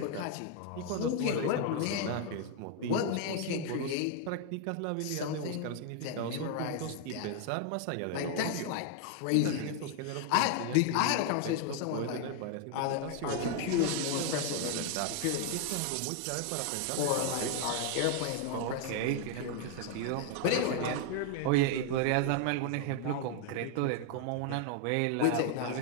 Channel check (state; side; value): different; both; correlation 0.00